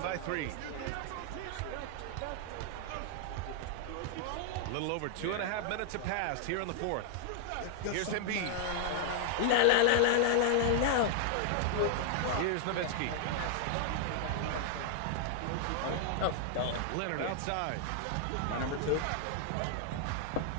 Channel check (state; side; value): different; both; correlation 0.00